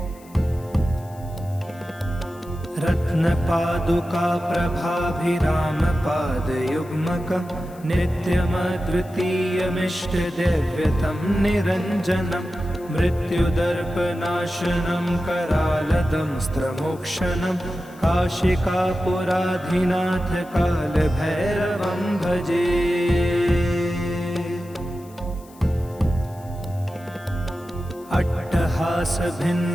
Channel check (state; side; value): noise; left; hiss, 25 dB below the sound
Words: रत्नपादुका प्रभाभिरामपादयुग्मकं नित्यमद्वितीयमिष्टदैव्यतं निरञ्जनं मृत्युदर्पनाशनं करालदंस्त्रमोक्षणं काशिकापुराधिनाथ कालभैरवं भजे।